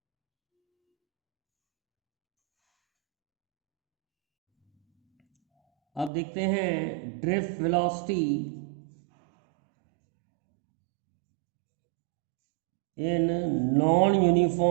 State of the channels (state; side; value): drops out; left; at 6.1 s